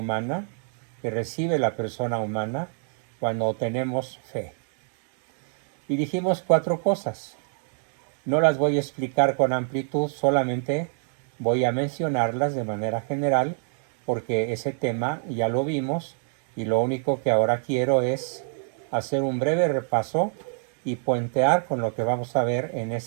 que recibe la persona humana cuando tenemos fe. Y dijimos 4 cosas. No las voy a explicar con amplitud, solamente voy a mencionarlas de manera general, porque ese tema ya lo vimos y lo único que ahora quiero es hacer un breve repaso y puentear con lo que vamos a ver en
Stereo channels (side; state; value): left; silent; 59 dB below the other